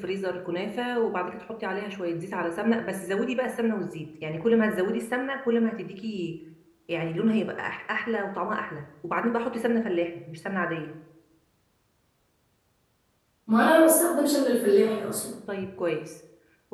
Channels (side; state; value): both; identical; correlation 1.00